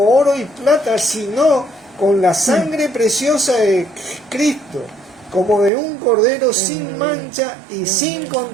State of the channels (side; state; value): left; drops out; at 5.7 s